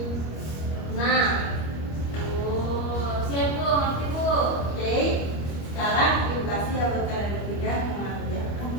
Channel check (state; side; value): late; right; 25 ms